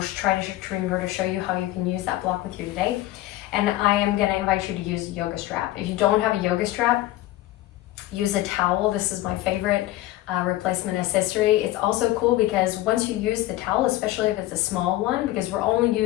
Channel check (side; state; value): right; quieter; 16.0 dB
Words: try to remember to show you how you can use that block with you today. And I am going to invite you to use a yoga strap. If you don't have a yoga strap, use a towel. This is my favorite replacement accessory. It's also cool because once you use the towel, especially if it's a small one, because we're only